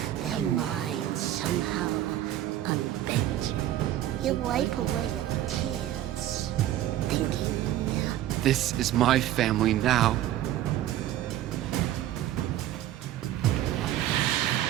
Their minds somehow unbent. You wipe away your tears, thinking, This is my family now.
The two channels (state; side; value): quieter; left; 12.9 dB